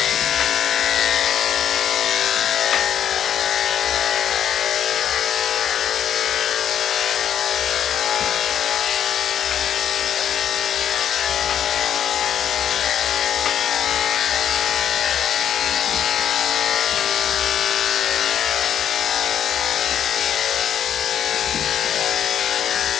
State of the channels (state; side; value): quieter; right; 9.5 dB